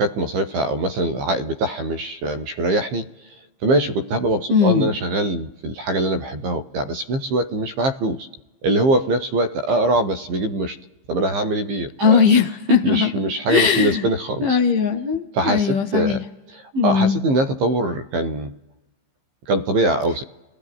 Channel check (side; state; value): left; late; 15 ms